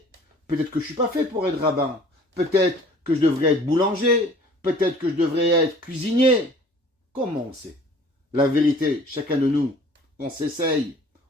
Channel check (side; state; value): both; normal; correlation 0.50